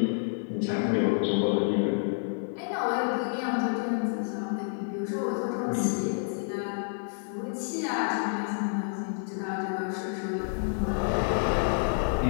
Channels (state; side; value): silent; right; digital silence